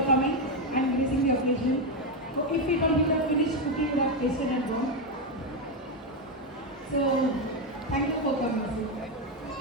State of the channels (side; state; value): both; normal; correlation 0.07